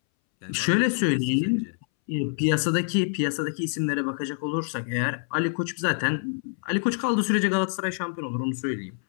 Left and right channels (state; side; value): silent; right; 61 dB below the other